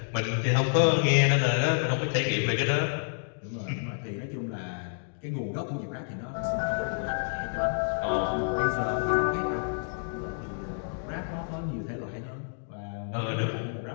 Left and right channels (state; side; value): silent; right; digital silence